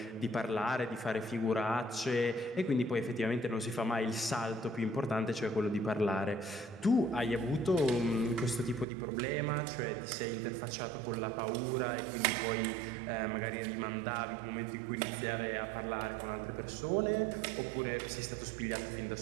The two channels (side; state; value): left; drops out; at 8.8 s